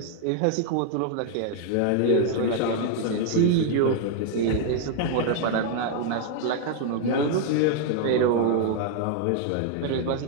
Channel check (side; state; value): both; different; correlation 0.00